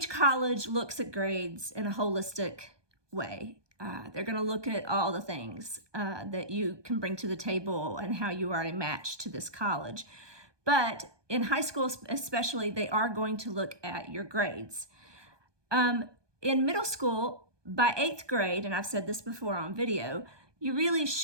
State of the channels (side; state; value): left; late; 1.2 ms